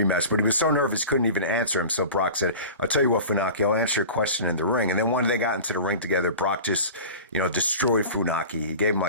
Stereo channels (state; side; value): inverted; both; correlation -0.37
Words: but he was so nervous he couldn't even answer him. So Brock said, "I'll tell you what, Funaki, I'll answer your question in the ring." And then when they got into the ring together, Brock just, destroyed Funaki. He gave him